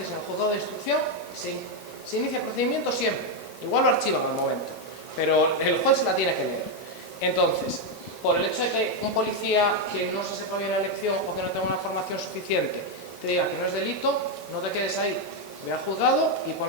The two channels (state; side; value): normal; both; correlation 0.04